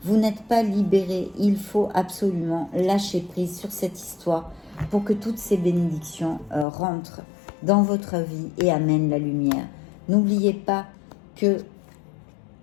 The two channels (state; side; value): drops out; right; at 6.7 s